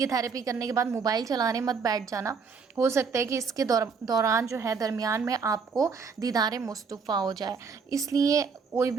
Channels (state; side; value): quieter; left; 5.4 dB